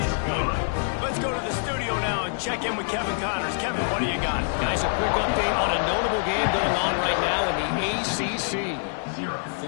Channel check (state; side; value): silent; right; digital silence